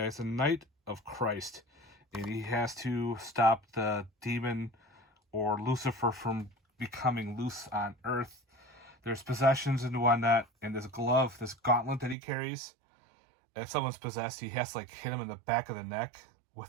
a knight of Christ, and he has to stop the demon or Lucifer from becoming loose on Earth. There's possessions and whatnot, and this glove, this gauntlet that he carries. And if someone's possessed, he has to like hit him in the back of the neck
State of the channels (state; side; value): drops out; left; at 12.2 s